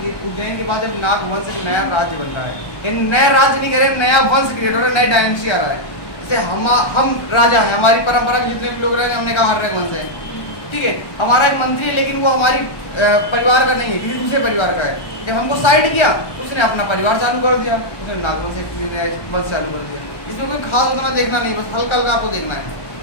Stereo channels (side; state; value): right; late; 1.1 ms